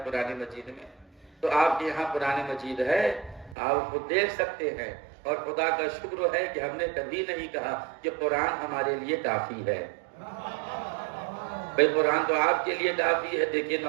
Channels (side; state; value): left; drops out; at 3.6 s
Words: قرآن مجید میں؟ تو آپ کے یہاں قرآن مجید ہے، آپ خود دیکھ سکتے ہیں۔ اور خدا کا شکر ہے کہ ہم نے کبھی نہیں کہا کہ قرآن ہمارے لیے کافی ہے۔ بھئی قرآن تو آپ کے لیے کافی ہے۔ دیکھیے